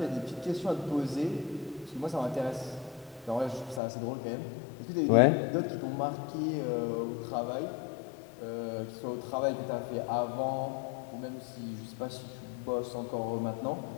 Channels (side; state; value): right; drops out; at 3.8 s